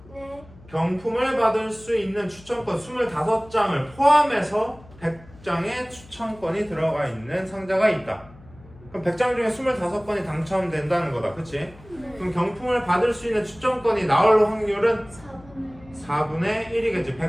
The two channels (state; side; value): noise; left; hum, 22 dB below the sound